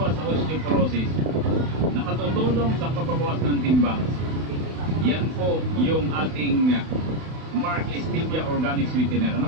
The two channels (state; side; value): late; left; 31 ms